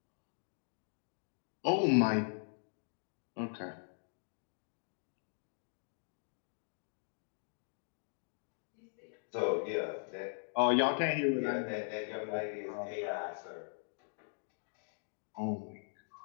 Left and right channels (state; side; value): silent; right; digital silence